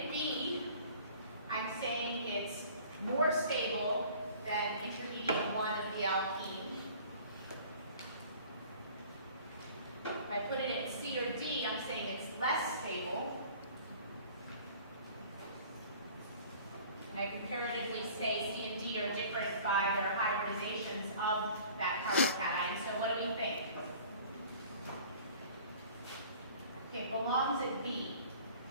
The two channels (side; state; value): both; inverted; correlation -0.48